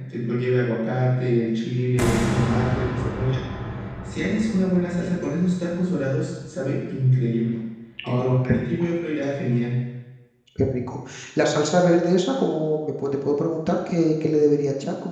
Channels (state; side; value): identical; both; correlation 1.00